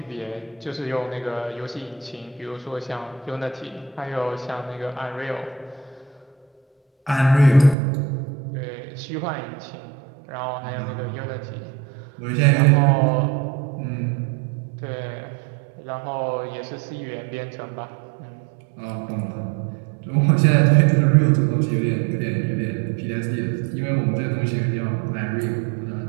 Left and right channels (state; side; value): drops out; left; at 7.8 s